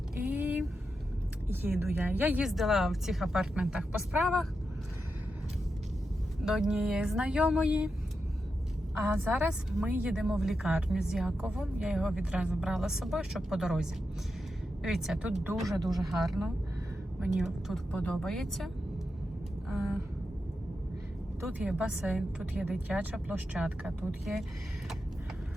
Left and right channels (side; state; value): both; normal; correlation 0.88